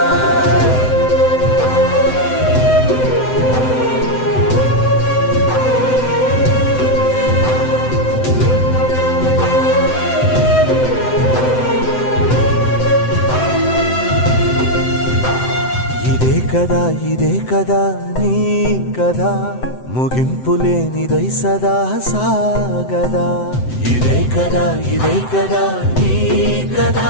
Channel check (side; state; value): right; late; 7.8 ms